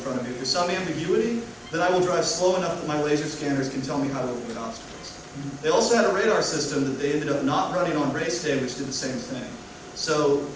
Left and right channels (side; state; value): both; identical; correlation 1.00